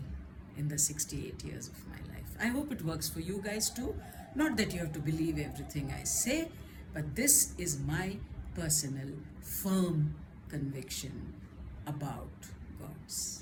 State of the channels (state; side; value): identical; both; correlation 1.00